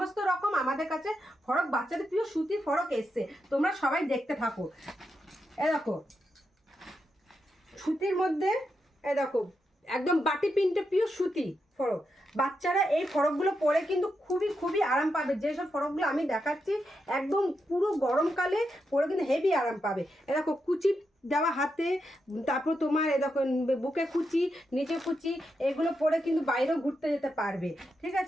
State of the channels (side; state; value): both; normal; correlation 0.85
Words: রকম আমাদের কাছে ফরক, বাচ্চাদের প্রিয় সুতির ফরক এসছে, তোমরা সবাই দেখতে থাকো। এ দেখো সুতির মধ্যে, এ দেখো একদম বাটি প্রিন্টে প্রিয় সুতি ফরক। বাচ্চারা এই ফরকগুলো পরে কিন্তু খুবই খুবই আরাম পাবে। যেসব ফরকগুলো আমি দেখাচ্ছি একদম পুরো গরমকালে পরে কিন্তু হেভি আরাম পাবে। এ দেখো কুচি দেওয়া হাতে, তারপর তোমার এ দেখো বুকে কুচি, নিচে কুচি, এগুলো পরে কিন্তু বাইরেও ঘুরতে যেতে পারবে। ঠিক